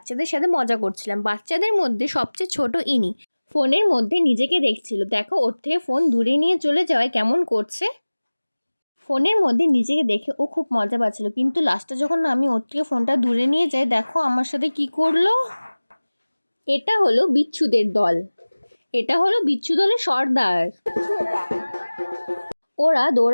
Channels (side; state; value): both; inverted; correlation -1.00